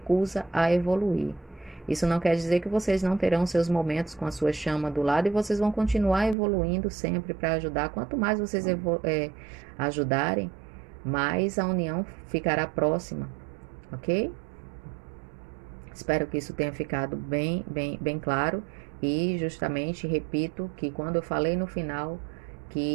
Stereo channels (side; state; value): left; drops out; at 6.4 s